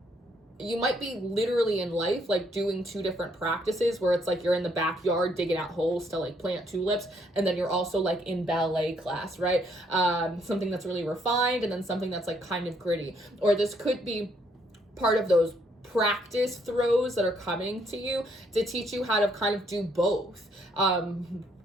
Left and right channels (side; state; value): both; normal; correlation 0.70